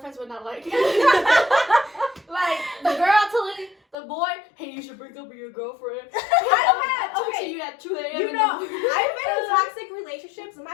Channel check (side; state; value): right; drops out; at 4.0 s